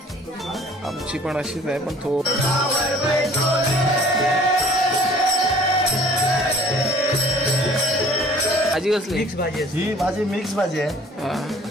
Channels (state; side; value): normal; both; correlation 0.51